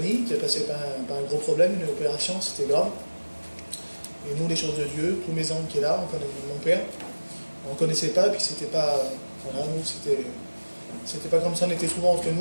qui est passé par un gros problème, une opération, c'était grave. Et nous, les choses de Dieu, tous mes oncles qui est là, on connaît mon père, on ne connaissait pas, et puis c'était pas, voilà, nous, c'était pas comme ça, on était souvent entre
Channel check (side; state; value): both; inverted; correlation -1.00